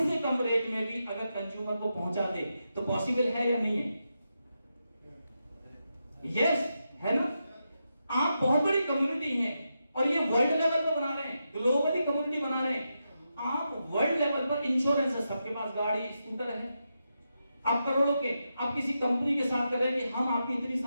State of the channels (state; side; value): inverted; both; correlation -0.86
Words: से कम रेट में भी अगर कंज्यूमर को पहुंचा दे, तो पॉसिबल है या नहीं है? यस, है ना। आप बहुत बड़ी कम्युनिटी हैं और ये वर्ल्ड लेवल पर बना रहे हैं, ग्लोबली कम्युनिटी बना रहे हैं। आप वर्ल्ड लेवल पर इंश्योरेंस है, सबके पास गाड़ी स्कूटर है, आप करोड़ों के, आप किसी कंपनी के साथ कर रहे हैं कि हम आपकी इतनी